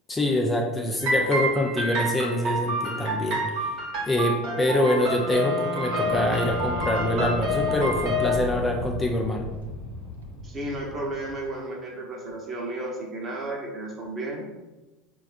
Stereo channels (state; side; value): normal; both; correlation 0.50